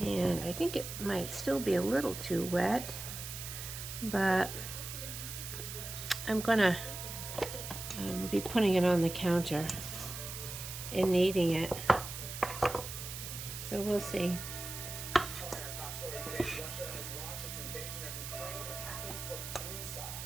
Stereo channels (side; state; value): right; noise; hiss, 8 dB below the sound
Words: I think it might still be a little too wet, but I'm gonna be putting it on the counter and kneading it. So we'll see.